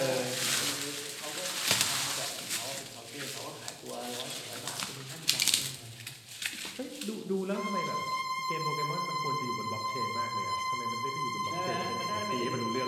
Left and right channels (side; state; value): both; identical; correlation 1.00